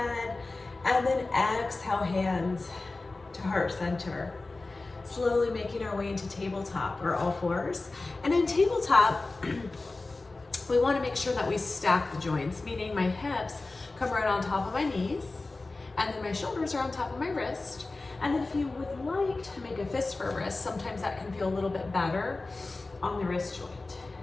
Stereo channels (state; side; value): quieter; right; 3.3 dB